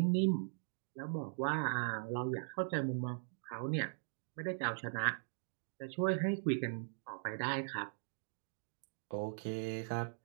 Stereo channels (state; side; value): silent; left; digital silence